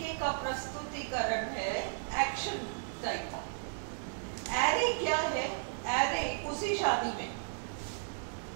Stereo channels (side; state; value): left; silent; digital silence